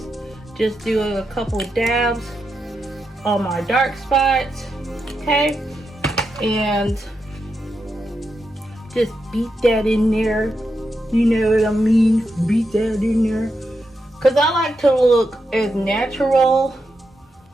just do a couple dabs on my dark spots, okay, and just beat that in there. You know what I mean? Beat that in there. Because I like to look as natural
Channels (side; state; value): both; normal; correlation 0.85